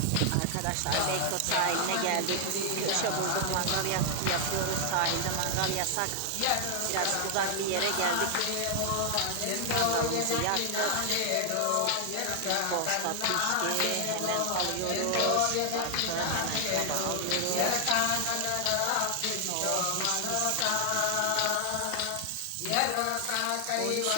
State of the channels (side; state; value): both; different; correlation 0.00